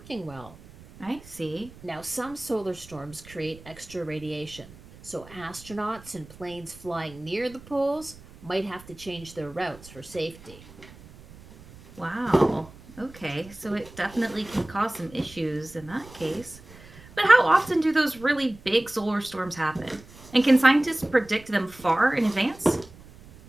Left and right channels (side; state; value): right; noise; rumble, 20 dB below the sound